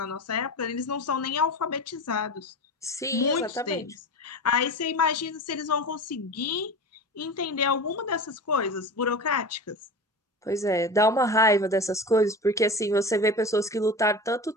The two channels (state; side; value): normal; both; correlation 0.30